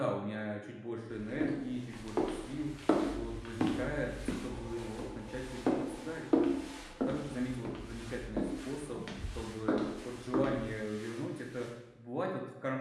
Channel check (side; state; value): both; identical; correlation 1.00